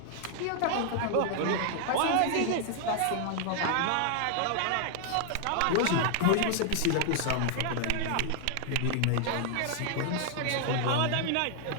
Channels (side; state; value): both; different; correlation 0.00